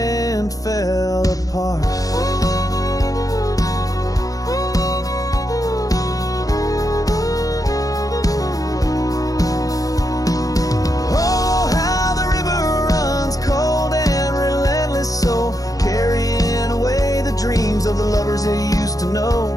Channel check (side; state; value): right; late; 0.17 ms